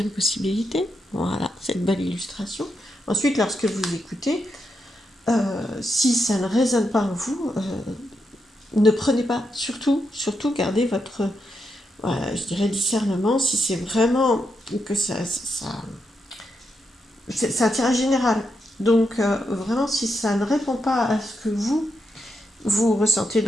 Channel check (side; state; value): both; normal; correlation 0.83